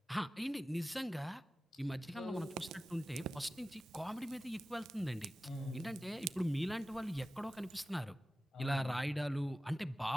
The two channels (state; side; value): normal; both; correlation 0.95